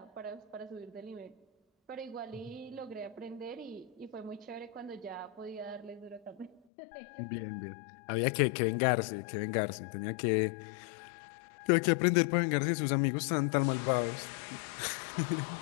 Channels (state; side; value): drops out; right; at 6.6 s